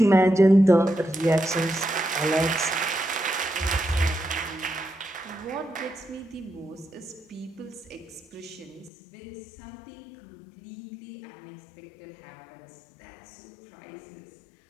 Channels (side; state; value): right; drops out; at 8.9 s